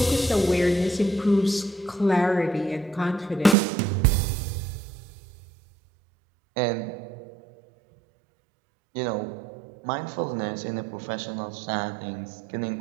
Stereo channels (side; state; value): left; drops out; at 3.6 s